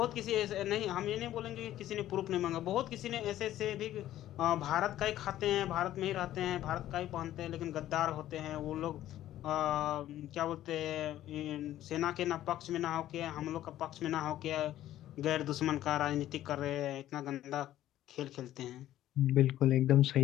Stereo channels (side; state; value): right; quieter; 13.2 dB